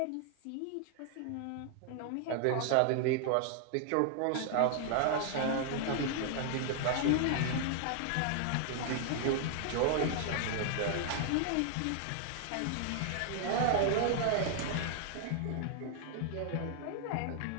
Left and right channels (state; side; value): different; both; correlation 0.00